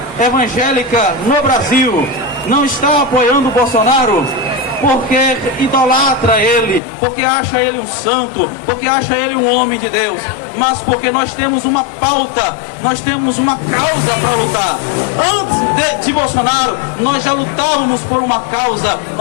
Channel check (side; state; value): right; drops out; at 6.8 s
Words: evangélica no Brasil não está apoiando o Bolsonaro porque idolatra ele, porque acha ele um santo, porque acha ele um homem de Deus, mas porque nós temos uma pauta, nós temos uma causa para lutar. Antes de Bolsonaro, nós já lutávamos por uma causa,